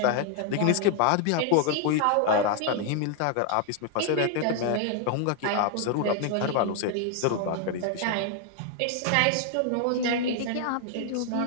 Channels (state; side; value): different; both; correlation 0.00